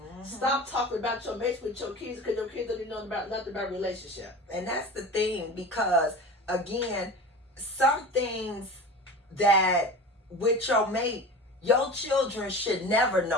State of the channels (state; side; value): normal; both; correlation 0.34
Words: Stop talking about your mates with your kids because your kids don't even know about nothing about relationship. And that's the thing because. Again, some things that with your mate, your children should never